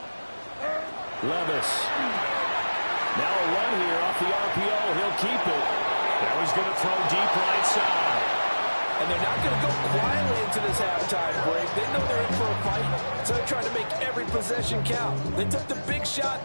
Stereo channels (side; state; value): both; inverted; correlation -1.00